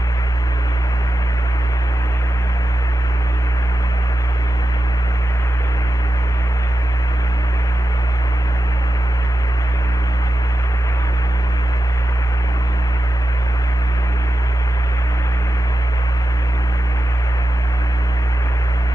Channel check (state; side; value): normal; both; correlation 0.91